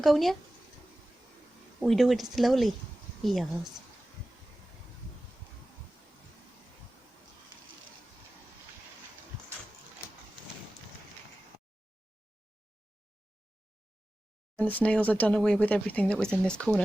We do it slowly. Yes. And the snails have done away with everything that was in this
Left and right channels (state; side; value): normal; both; correlation 0.95